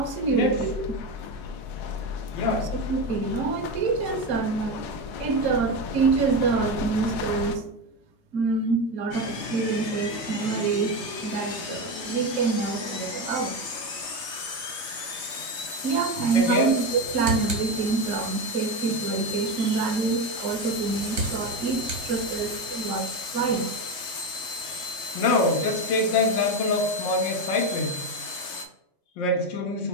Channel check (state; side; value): late; right; 3.3 ms